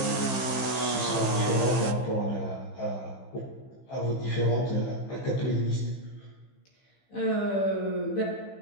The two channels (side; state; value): right; late; 15 ms